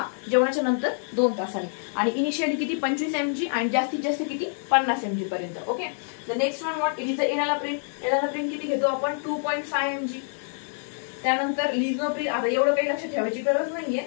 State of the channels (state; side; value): silent; right; digital silence